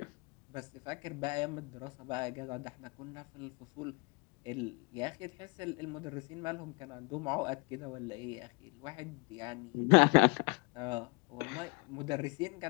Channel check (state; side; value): quieter; right; 32.9 dB